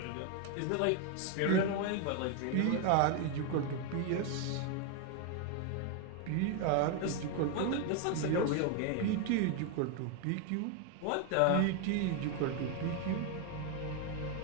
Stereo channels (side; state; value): both; different; correlation 0.01